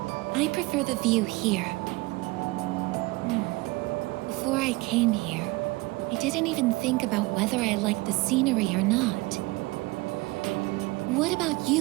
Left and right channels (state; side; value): quieter; left; 22.9 dB